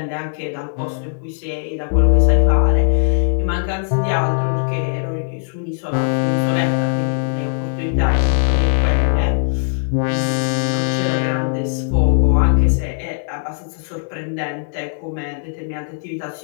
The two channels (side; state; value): right; silent; digital silence